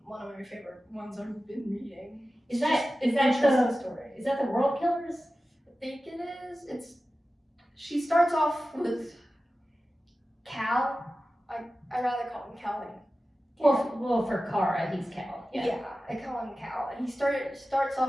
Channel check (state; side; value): normal; both; correlation 0.94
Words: one of my favorite ones I've been reading. Is that the story? Is that the World Killers? I think it is. She starts off with Cal. I rather call him Cal. Well, for Kara, he's Cal. Yeah, I call him Cal. And he starts